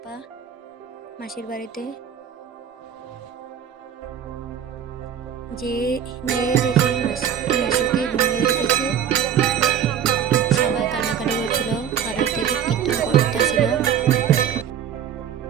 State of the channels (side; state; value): left; quieter; 9.0 dB